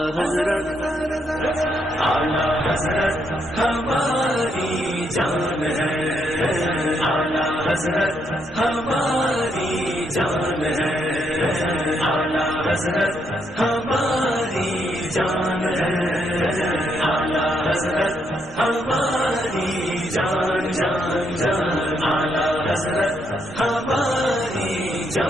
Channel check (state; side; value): normal; both; correlation 0.76